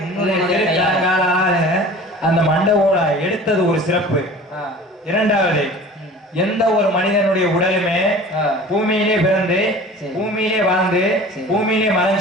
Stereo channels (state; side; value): normal; both; correlation 0.41